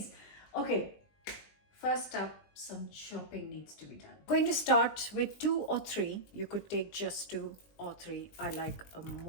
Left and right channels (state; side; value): late; right; 20 ms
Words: Okay, first up, some chopping needs to be done. Going to start with 2 or 3. You could take just 2 or 3. I like